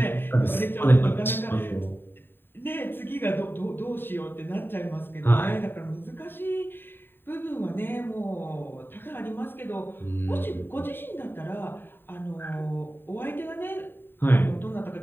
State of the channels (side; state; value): right; late; 0.099 ms